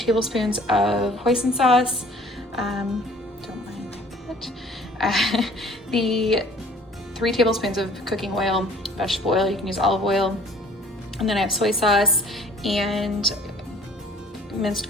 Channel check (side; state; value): both; normal; correlation 0.53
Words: of hoisin sauce, don't mind that, the 3 tablespoons of cooking oil, vegetable oil, you can use olive oil, and then I have soy sauce and minced